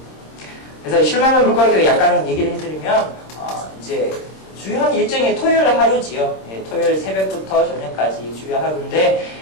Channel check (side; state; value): right; late; 26 ms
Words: 그래서 실만한 물가교회 약간 얘기를 해드리면 이제 주요한 일정이 토요일 하루지요. 토요일 새벽부터 저녁까지 주요 하루인데